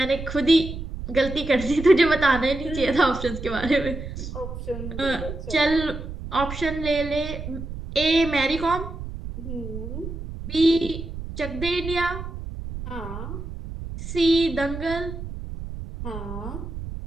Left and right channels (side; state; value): right; noise; rumble, 8 dB below the sound